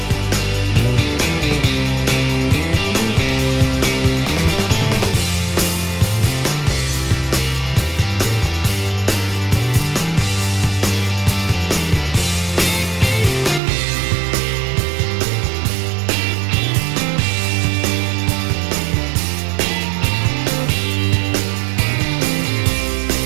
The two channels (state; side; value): drops out; left; at 13.6 s